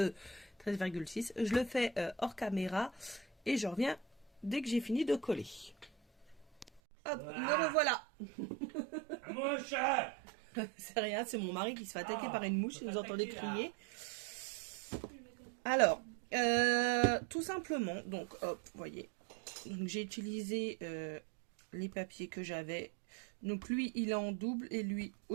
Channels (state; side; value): drops out; left; at 6.8 s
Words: Je le fais hors caméra et je reviens dès que j'ai fini de coller. Hop, me revoilà. Mouche. C'est rien, c'est mon mari qui se fait attaquer par une mouche, si vous entendez crier. Alors, tout simplement, donc hop, vous voyez, j'ai utilisé les papiers que j'avais. Donc lui, il est en double et lui